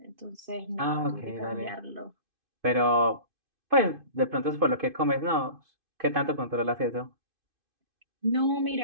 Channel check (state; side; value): late; left; 2.5 ms